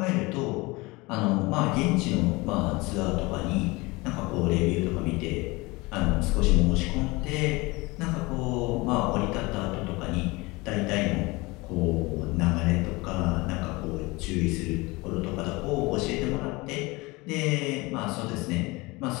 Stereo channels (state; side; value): quieter; right; 23.7 dB